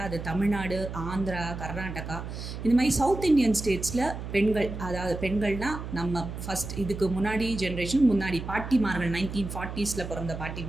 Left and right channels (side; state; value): right; noise; hum, 8 dB below the sound